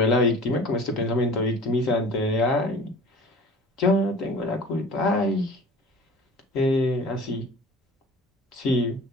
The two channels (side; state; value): both; normal; correlation 0.42